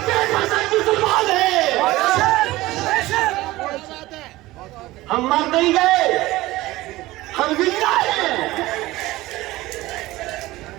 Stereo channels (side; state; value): left; quieter; 18.2 dB